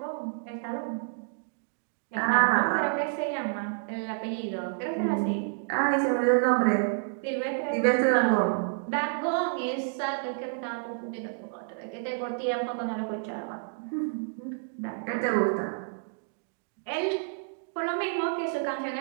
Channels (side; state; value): left; silent; digital silence